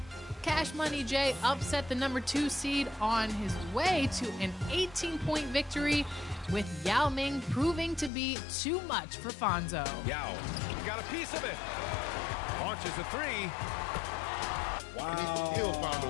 Cash Money J upset the number 2 seed on his way to an 18-point victory, with Yao Ming proving to be too much for Fonzo. Yao got a piece of it. Launches a 3. Wow. And he still found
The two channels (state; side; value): drops out; right; at 8.1 s